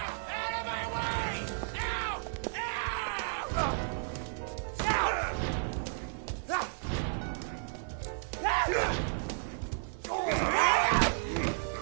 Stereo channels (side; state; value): left; silent; 56 dB below the other